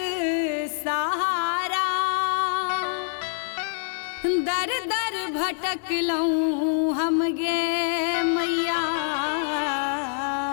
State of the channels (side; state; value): right; silent; 61 dB below the other